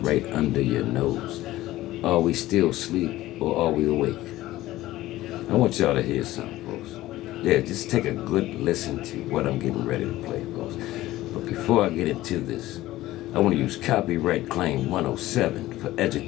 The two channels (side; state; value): right; quieter; 16.2 dB